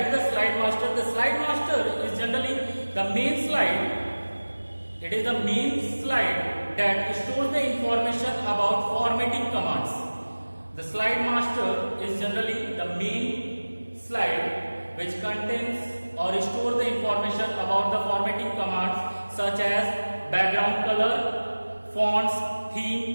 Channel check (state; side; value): inverted; both; correlation -1.00